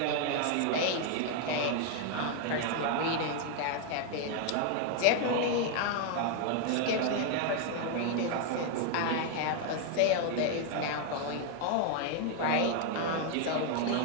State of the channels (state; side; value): different; both; correlation 0.00